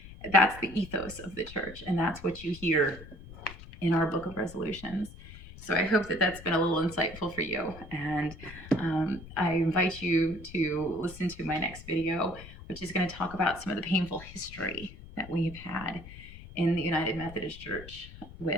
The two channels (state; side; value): noise; left; rumble, 16 dB below the sound